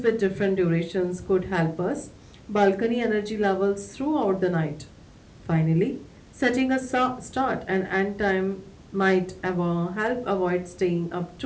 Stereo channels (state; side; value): identical; both; correlation 1.00